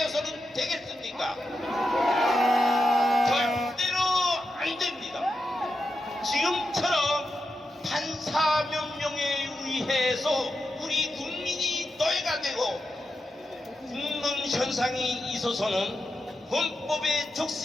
되겠습니까? 절대로 안 됩니다. 지금처럼 판사 명령에 의해서 우리 국민이 노예가 되고 죽는 현상이 있어서는 헌법에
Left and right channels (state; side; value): normal; both; correlation 0.88